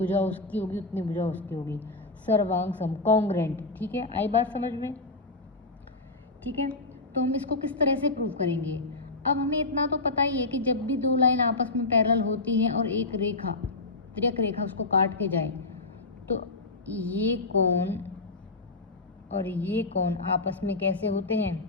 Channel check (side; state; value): right; quieter; 3.2 dB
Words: उसकी होगी उतनी भुजा उसकी होगी। सर्वांग सम, कॉन्ग्रेंट। ठीक है, आई बात समझ में। ठीक है, तो हम इसको किस तरह से प्रूव करेंगे। अब हमें इतना तो पता ही है कि जब भी 2 लाइन आपस में पैरेलल होती हैं और एक रेखा, तिर्यक रेखा उसको काट के जाए, तो ये कोण और ये कोण आपस में कैसे होते हैं,